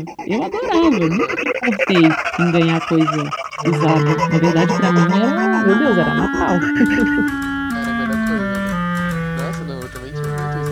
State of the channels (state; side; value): identical; both; correlation 1.00